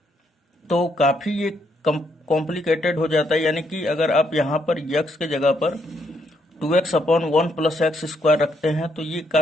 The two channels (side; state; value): both; normal; correlation 0.75